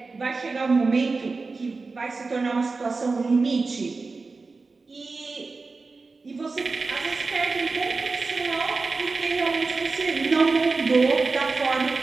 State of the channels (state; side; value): quieter; left; 4.0 dB